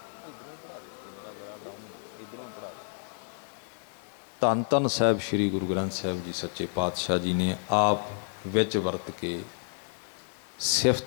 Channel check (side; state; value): right; silent; digital silence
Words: ਧੰਨ ਧੰਨ ਸਾਹਿਬ ਸ੍ਰੀ ਗੁਰੂ ਗ੍ਰੰਥ ਸਾਹਿਬ ਜੀ ਸੱਚੇ ਪਾਤਸ਼ਾਹ ਜੀ ਨੇ ਆਪ ਵਿੱਚ ਵਰਤ ਕੇ